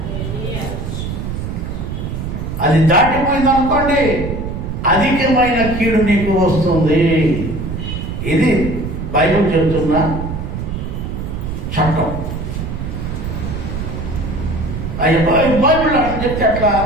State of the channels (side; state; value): right; noise; rumble, 5 dB below the sound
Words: అది దాటిపోయింది అనుకోండి, అధికమైన కీడు నీకు వస్తుంది. ఇది బైబిల్ చెబుతున్న చట్టం. బైబిల్ అట్లా చెప్తే అట్లా,